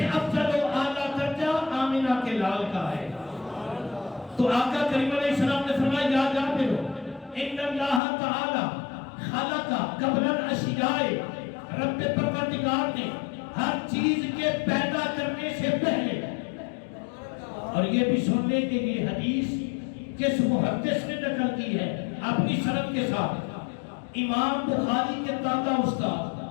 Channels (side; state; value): right; drops out; at 8.0 s